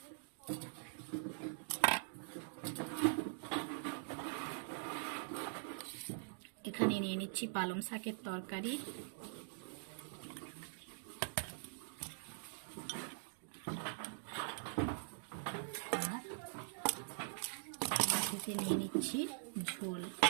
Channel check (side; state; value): left; silent; digital silence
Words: এখানে নিয়ে নিচ্ছি পালং শাকের তরকারি, আর বাটিতে নিয়ে নিচ্ছি ঝোল।